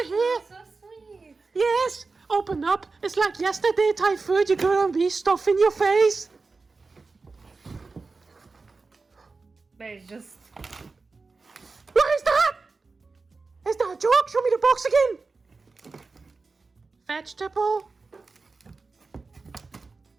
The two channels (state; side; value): quieter; left; 4.0 dB